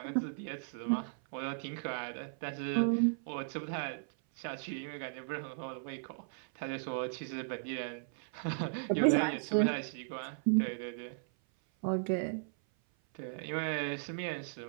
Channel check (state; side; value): silent; left; 54 dB below the other